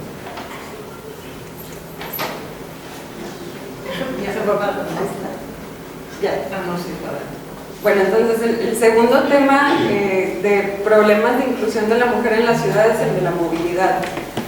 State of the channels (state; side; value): identical; both; correlation 1.00